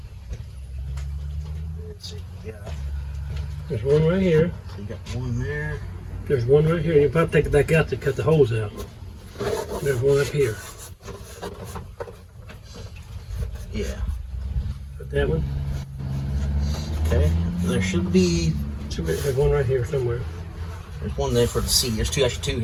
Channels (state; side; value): identical; both; correlation 1.00